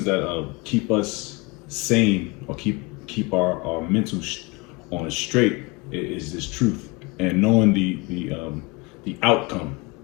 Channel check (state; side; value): quieter; right; 26.1 dB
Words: that keep us sane or keep our mental on straight is this truth and knowing the outcome.